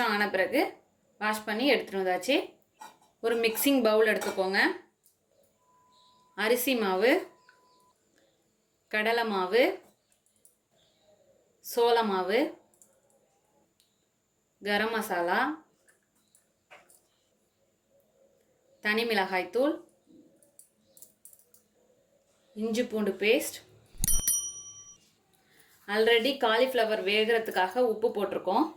ஆன பிறகு வாஷ் பண்ணி எடுத்துகிட்டு வந்தாச்சு. ஒரு மிக்சிங் பவுல் எடுத்துக்கோங்க. அரிசி மாவு, கடலை மாவு, சோள மாவு, கரம் மசாலா, தனி மிளகாய்த்தூள், இஞ்சி பூண்டு பேஸ்ட். ஆல்ரெடி காலிஃப்ளவர் வேகிறதுக்காக உப்பு போட்டிருக்கோம்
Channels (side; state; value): both; identical; correlation 1.00